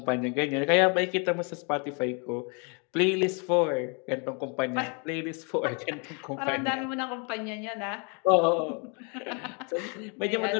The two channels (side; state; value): right; quieter; 35.4 dB